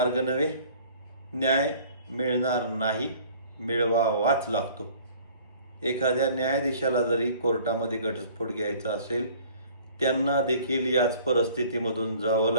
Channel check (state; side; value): inverted; both; correlation -0.51